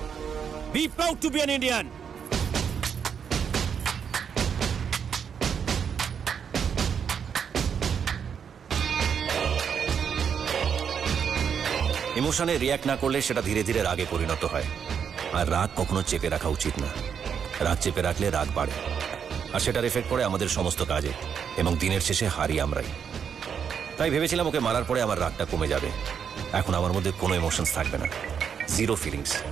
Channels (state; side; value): quieter; left; 7.3 dB